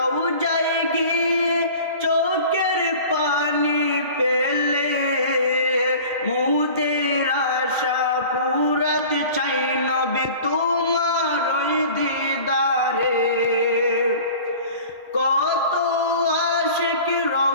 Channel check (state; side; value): inverted; both; correlation -0.42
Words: গিয়ে চোখের পানি পেলে, মুদের আশা পুরাতে চাই নবী তোমার ওই দিদারে। কত আশিক